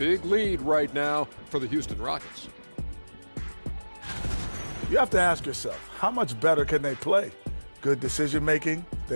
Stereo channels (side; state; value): both; inverted; correlation -1.00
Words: lead right now for the Houston Rockets. You have to ask yourself, how much better can they play? Good decision making,